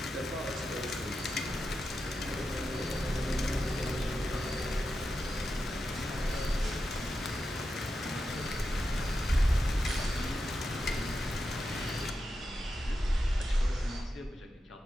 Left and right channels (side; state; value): both; normal; correlation 0.89